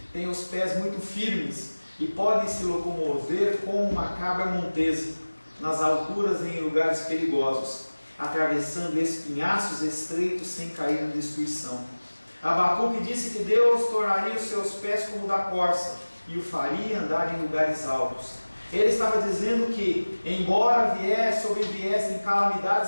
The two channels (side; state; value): both; inverted; correlation -1.00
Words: tem os pés muito firmes e podem se locomover como uma cabra montesa nas alturas e em lugares perigosos, atravessando espinhaços estreitos sem cair na destruição. Abacuque disse que Deus tornaria os seus pés como o da corça e o faria andar em lugares altos. Ele estava dizendo que, embora sobreviessem